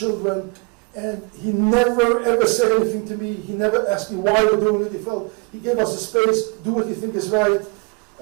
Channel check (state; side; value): quieter; left; 30.8 dB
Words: and he never ever said anything to me. He never asked me why we're doing it. He gave us a space, do what you think is right.